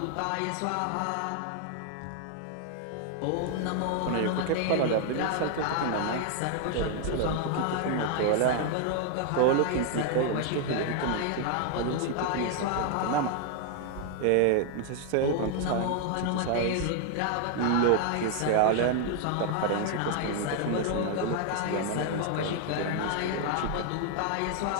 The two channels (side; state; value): both; different; correlation 0.00